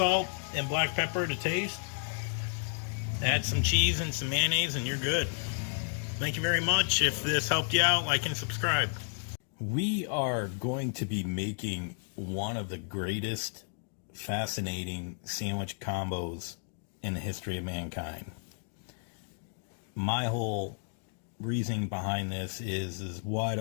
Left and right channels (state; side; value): silent; right; digital silence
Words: and black pepper to taste. Add some cheese and some mayonnaise and you're good. Thank you very much. If this helped you out, like and subscribe. We are going to be making one of the greatest fascinating sandwich combos in the history of mankind. My whole reasoning behind this is why